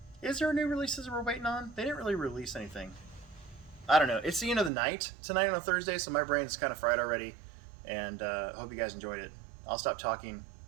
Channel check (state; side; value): drops out; left; at 4.7 s